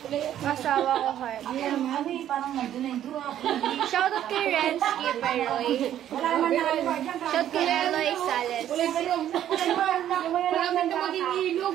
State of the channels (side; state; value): left; quieter; 11.2 dB